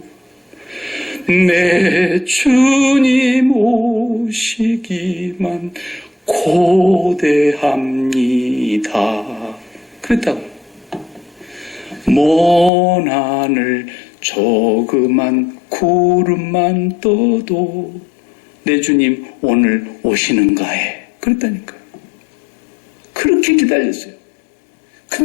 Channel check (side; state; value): right; drops out; at 12.7 s